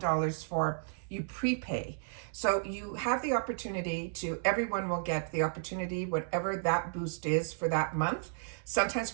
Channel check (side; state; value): left; silent; 56 dB below the other